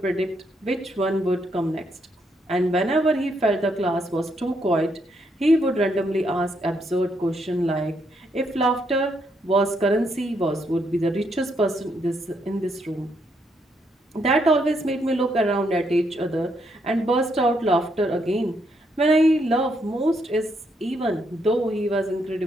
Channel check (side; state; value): both; normal; correlation 0.76